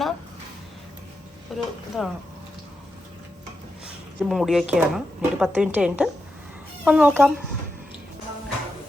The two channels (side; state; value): both; normal; correlation 0.87